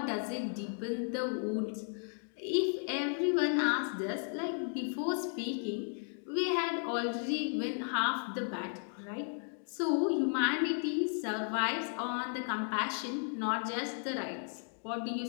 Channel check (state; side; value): silent; right; 55 dB below the other